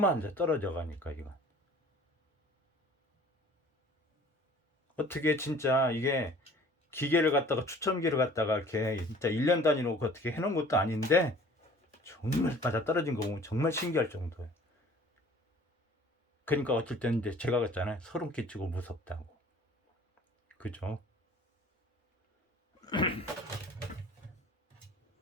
떨어져 가니까 이거. 어떻게 진짜 이게 기계를 갖다가 추첨기를 갖다가 이렇게 진짜 1년 단위로 어떻게 해놓은 것도 아닌데 정말 맞아 떨어진 거 보면 정말 신기할 정도예요. 그러니까 어쩔 때는 이제 제가 그랬잖아요. 소름 끼치고 무섭다고. 그죠?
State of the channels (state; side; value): normal; both; correlation 0.49